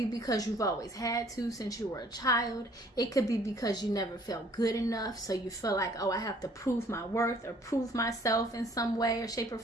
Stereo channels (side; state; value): both; normal; correlation 0.58